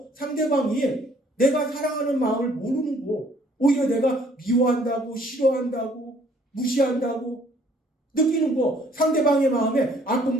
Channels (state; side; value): normal; both; correlation 0.61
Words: 상대방이 내가 사랑하는 마음을 모르는 거 오히려 내가 미워한다고 싫어한다고 무시한다고 느끼는 거 상대방의 마음에